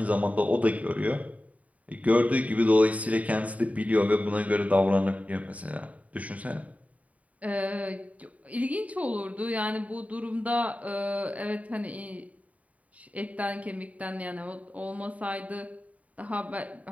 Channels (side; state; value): left; late; 0.069 ms